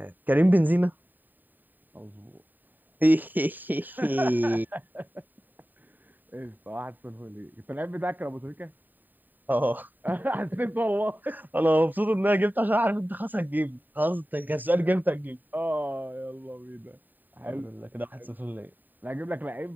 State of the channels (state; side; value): late; left; 0.089 ms